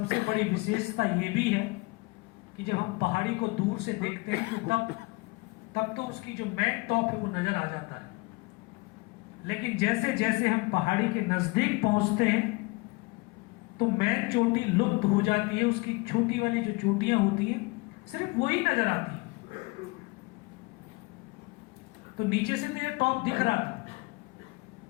बड़ी विशेषता यह भी है कि जब हम पहाड़ी को दूर से देखते हैं तो तब तो उसकी जो मेन टॉप है वो नजर आ जाता है, लेकिन जैसे जैसे हम पहाड़ी के नजदीक पहुंचते हैं तो मेन चोटी लुप्त हो जाती है। उसकी छोटी वाली जो चोटियां होती हैं सिर्फ वही नजर आती है। तो नीचे से तो ये टॉप दिख रहा था,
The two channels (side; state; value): right; quieter; 25.8 dB